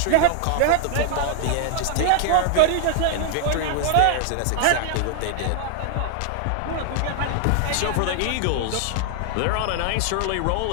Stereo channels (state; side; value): different; both; correlation -0.01